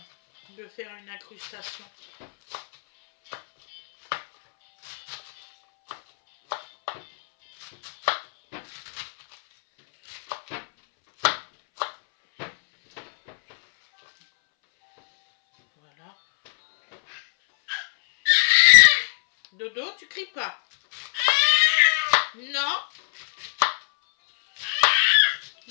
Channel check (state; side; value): silent; right; 64 dB below the other